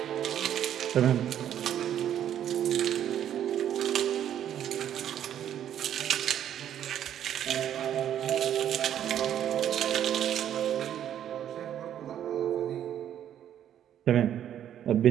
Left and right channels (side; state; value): left; quieter; 10.4 dB